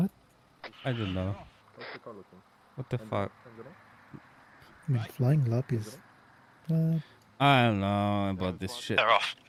I don't know. What the fuck? I mean, flying lap is. I don't know about this shit. They're off.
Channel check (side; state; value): both; identical; correlation 1.00